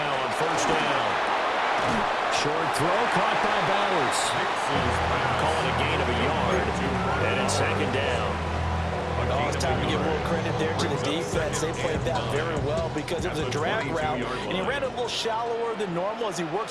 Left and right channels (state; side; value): identical; both; correlation 1.00